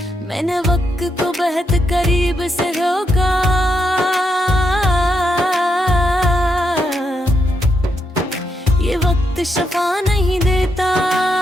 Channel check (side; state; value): both; normal; correlation 0.81